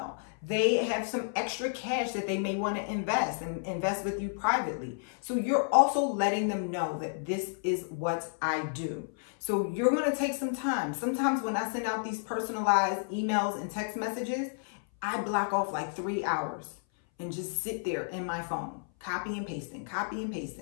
They have some extra cash that they may want to invest and invest with you privately. So you're also letting them know that this is what I do. So you're going to take some time. Sometimes when I send out these personalized emails and text messages, I block off like 3 hours and just sit there in my phone, copy and pasting,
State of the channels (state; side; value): silent; right; 57 dB below the other